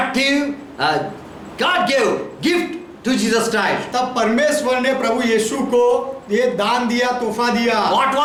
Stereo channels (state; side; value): identical; both; correlation 1.00